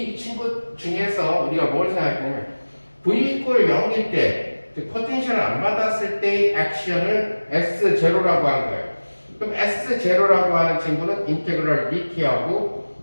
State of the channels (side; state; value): both; inverted; correlation -1.00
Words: 친구 중에서 우리가 뭘 생각하냐면, V 이퀄 0일 때 즉 포텐셜을 안 받았을 때의 액션을 S0라고 한 거예요. 그럼 S0라고 하는 친구는 인테그럴 dt하고